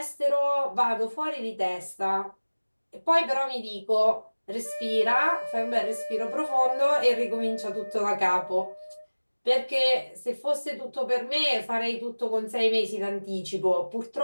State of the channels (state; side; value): inverted; both; correlation -1.00